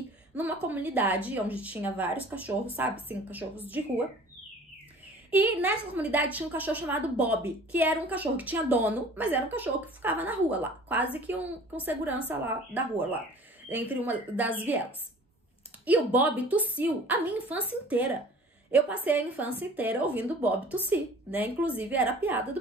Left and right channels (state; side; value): normal; both; correlation 0.46